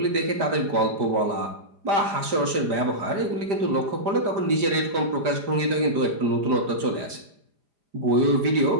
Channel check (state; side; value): late; left; 5.0 ms